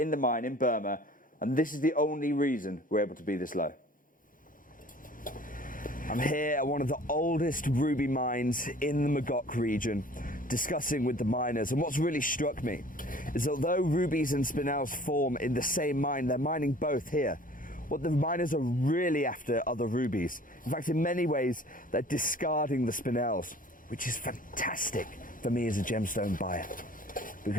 the mine in Burma, and this is the only reason we're able to be this low. I'm here at one of the oldest ruby mines in the Magok region, discussing with the miners, and what's really struck me is although rubies and spinels form in the same mine, they're mining both here. What the miners are really after are the rubies. In fact, in many ways, they're discarding the spinels, which is fantastic for me as a gemstone buyer,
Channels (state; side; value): normal; both; correlation 0.49